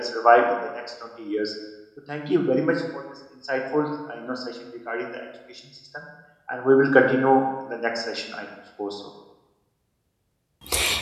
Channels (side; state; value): both; identical; correlation 1.00